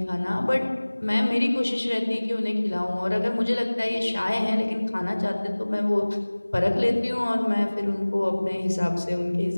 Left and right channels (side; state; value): both; inverted; correlation -1.00